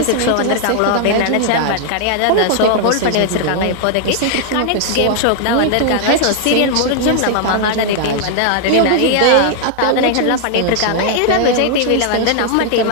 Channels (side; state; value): both; different; correlation 0.00